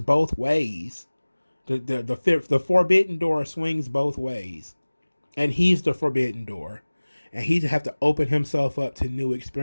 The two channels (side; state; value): both; inverted; correlation -1.00